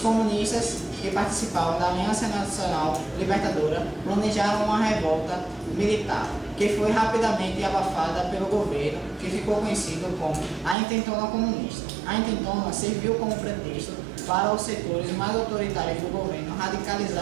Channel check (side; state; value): left; drops out; at 10.8 s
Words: comunistas que participavam da Aliança Nacional Libertadora planejaram uma revolta militar, que foi rapidamente abafada pelo governo, que ficou conhecido como a Intentona Comunista. A Intentona serviu como pretexto para os setores mais autoritários do governo